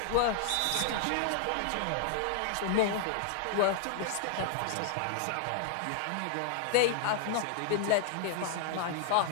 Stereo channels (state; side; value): different; both; correlation 0.00